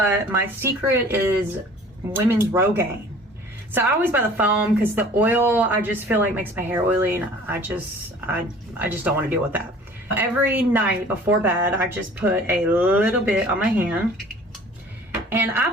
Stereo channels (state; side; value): normal; both; correlation 0.48